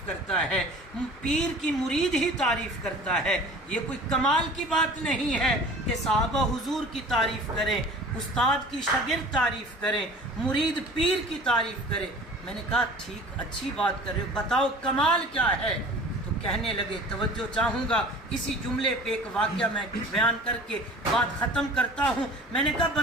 کرتا ہے، پیر کی مرید ہی تعریف کرتا ہے، یہ کوئی کمال کی بات نہیں ہے کہ صحابہ حضور کی تعریف کریں، استاد کی شاگرد تعریف کریں، مرید پیر کی تعریف کرے۔ میں نے کہا ٹھیک اچھی بات کر رہے ہو، بتاؤ کمال کیا ہے؟ تو کہنے لگے، توجہ چاہوں گا اسی جملے پہ ایک واقعہ میں بیان کر کے بات ختم کرتا ہوں۔ میں نے کہا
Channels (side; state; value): both; normal; correlation 0.44